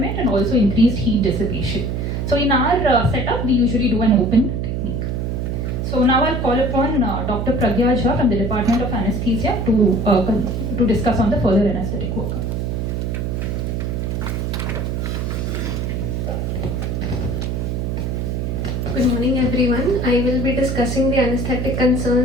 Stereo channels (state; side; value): noise; right; hum, 1 dB below the sound